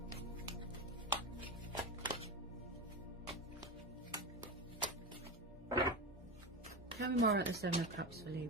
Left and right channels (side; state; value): both; normal; correlation 0.20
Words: Tell me more about the Seven of Cups for